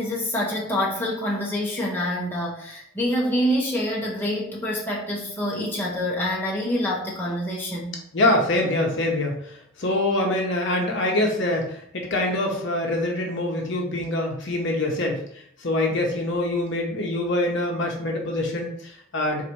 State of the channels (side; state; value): both; normal; correlation 0.32